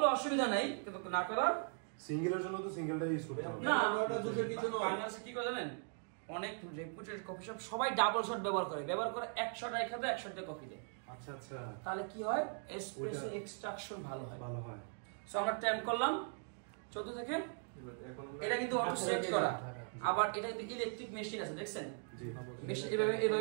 অসুবিধা নাই, কিন্তু না করা। সিঙ্গেলের জন্য তো সিঙ্গেলটা ইউজ করতে হবে না, ওটা দুধের কিছু না। বাংলাদেশে কি করে জানেন, অনেক রেপুটেড কফি শপ সবাই ডাবল শট ব্যবহার করে 1 শট রেখে দেয়, 1 শট দিয়ে কফি দেয়। আচ্ছা আচ্ছা, তাহলে কি হয়, এসপ্রেসো এক্সট্রাকশন ভালো হয়। ভালো হয়। সো আমরা টাইম করলাম 14 সেকেন্ড। এটা কিন্তু অটো সেট করা, আবার এটা কিন্তু ইলেকট্রিক মেশিন আছে, দেখছেন? জি, মেশিন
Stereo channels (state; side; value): silent; left; 51 dB below the other